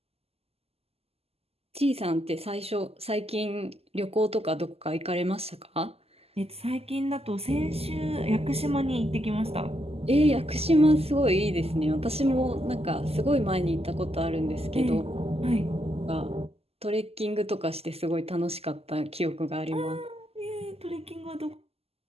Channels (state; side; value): late; left; 0.29 ms